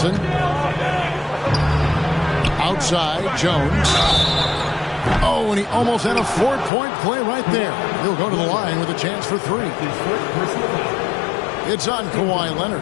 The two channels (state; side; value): drops out; right; at 6.7 s